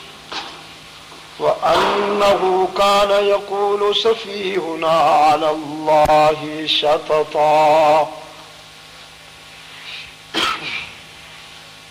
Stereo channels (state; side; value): identical; both; correlation 1.00